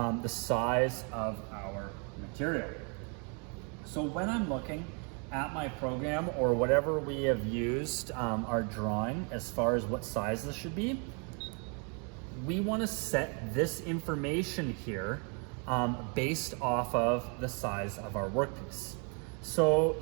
size of our material. So when I'm looking at my program or whatever we have used our drawing as far as what size this should be, we want to set this information here based off of the size of our workpiece. So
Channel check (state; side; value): quieter; left; 36.5 dB